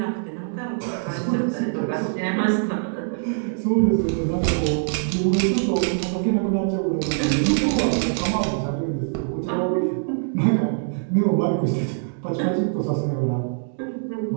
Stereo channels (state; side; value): silent; left; digital silence